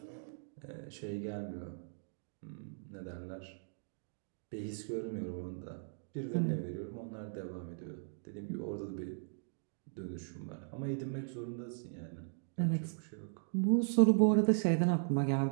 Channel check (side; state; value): left; silent; digital silence